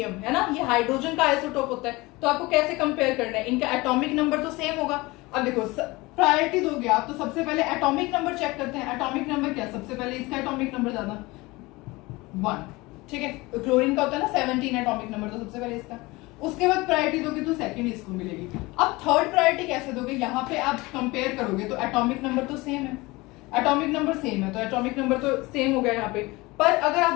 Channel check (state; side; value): quieter; right; 22.4 dB